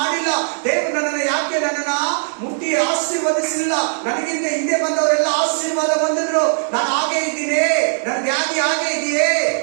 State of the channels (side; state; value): left; silent; digital silence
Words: ದೇವರು ನನ್ನನ್ನು ಯಾಕೆ ನನ್ನನ್ನ ಮುಟ್ಟಿ ಆಶೀರ್ವದಿಸಲಿಲ್ಲ? ನನಗಿಂತ ಹಿಂದೆ ಬಂದವರೆಲ್ಲ ಆಶೀರ್ವಾದ ಹೊಂದಿದ್ರು, ನಾನು ಹಾಗೆ ಇದ್ದೀನಿ, ನನ್ನ ವ್ಯಾಧಿ ಹಾಗೆ ಇದೆಯೇ,